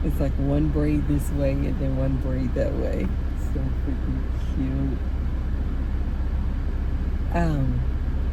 It's like one braid this way and then one braid that way. So freaking cute.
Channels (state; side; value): identical; both; correlation 1.00